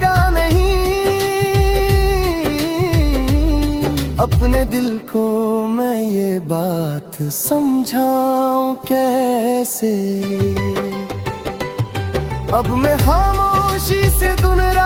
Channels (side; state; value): both; identical; correlation 1.00